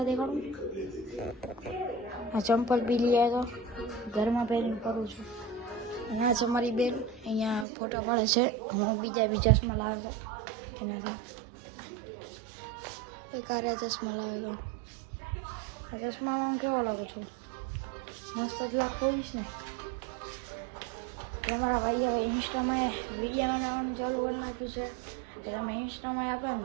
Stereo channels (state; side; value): drops out; left; at 7.7 s